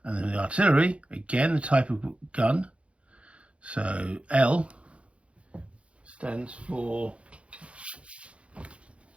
And then the artillery, again, the type of gun. So L stands for,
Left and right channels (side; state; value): left; late; 0.061 ms